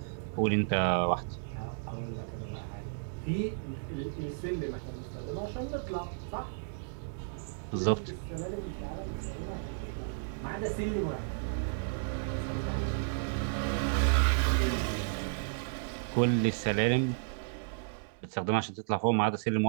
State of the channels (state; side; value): silent; left; digital silence